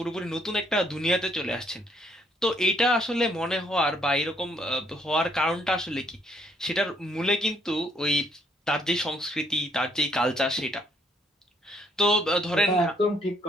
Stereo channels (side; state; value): both; normal; correlation 0.69